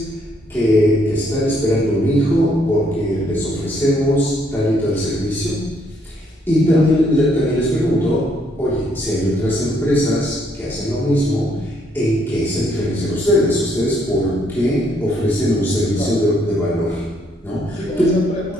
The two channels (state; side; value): normal; both; correlation 0.70